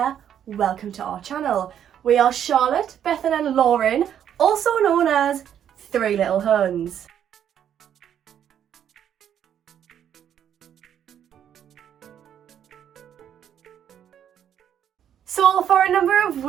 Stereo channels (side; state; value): left; quieter; 9.5 dB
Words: welcome to our channel. We are Charlotte, Bethan and Lauren, also known as Three Little Huns. So for a number of